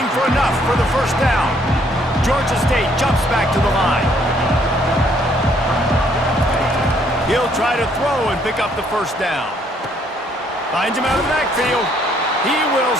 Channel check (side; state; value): both; normal; correlation 0.66